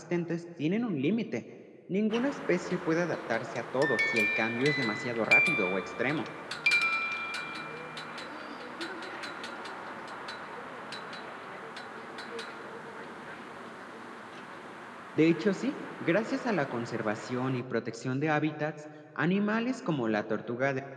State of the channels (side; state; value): both; identical; correlation 1.00